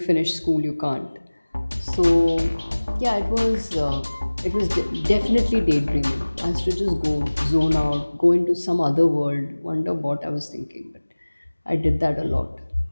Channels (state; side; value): inverted; both; correlation -1.00